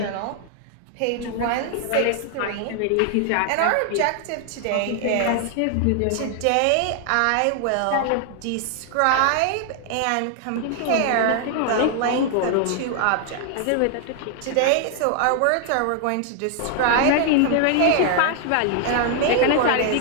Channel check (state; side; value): different; both; correlation 0.00